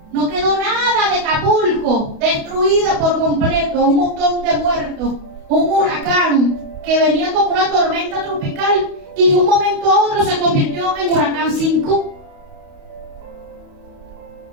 No quedó nada de Acapulco, destruida por completo, un montón de muertos, un huracán que venía como una tormenta tropical y de un momento a otro se convirtió en huracán 5.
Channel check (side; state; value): left; late; 28 ms